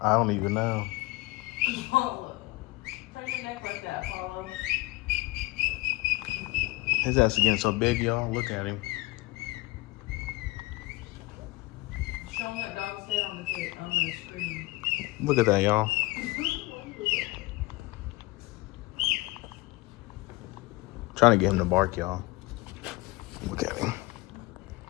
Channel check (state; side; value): quieter; right; 21.7 dB